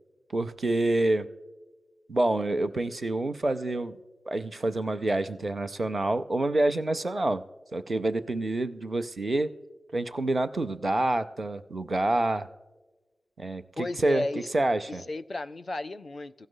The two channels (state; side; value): normal; both; correlation 0.94